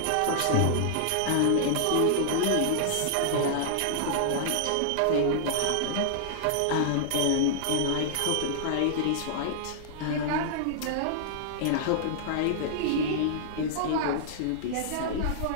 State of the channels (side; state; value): both; different; correlation -0.01